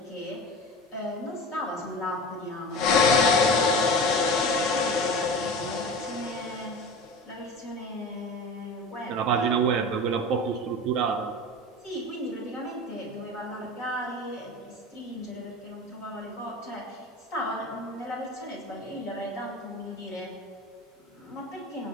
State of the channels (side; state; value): both; normal; correlation 0.32